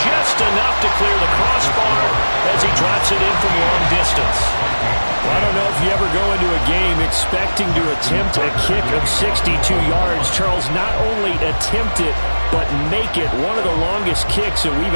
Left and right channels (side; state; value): both; inverted; correlation -1.00